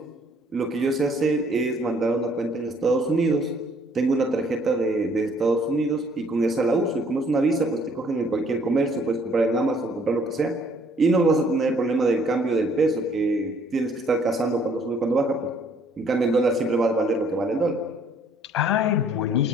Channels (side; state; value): both; normal; correlation 0.62